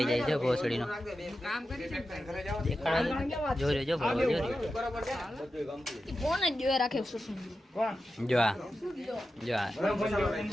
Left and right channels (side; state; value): both; normal; correlation 0.91